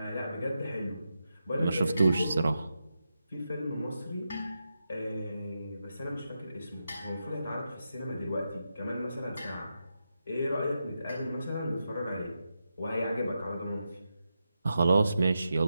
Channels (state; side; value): inverted; both; correlation -0.87